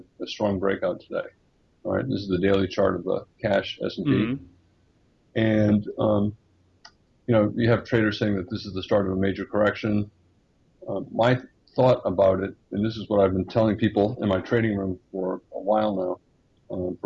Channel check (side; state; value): both; identical; correlation 1.00